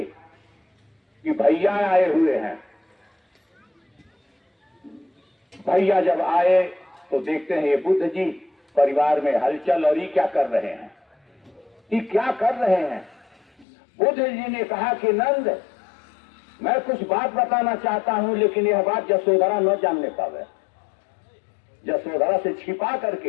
कि भैया आए हुए हैं। भैया जब आए तो देखते हैं ये बुद्ध जी परिवार में हलचल, और ये क्या कर रहे हैं, ये क्या कर रहे हैं। बुद्ध जी ने कहा कि नंद, मैं कुछ बात बताना चाहता हूं, लेकिन यह बात यशोधरा न जानने पावे। यशोधरा से छिपा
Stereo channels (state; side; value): drops out; right; at 13.7 s